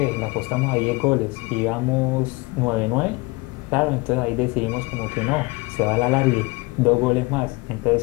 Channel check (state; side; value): quieter; right; 24.5 dB